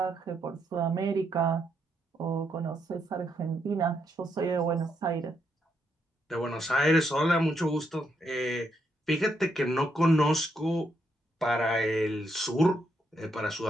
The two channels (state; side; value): normal; both; correlation 0.78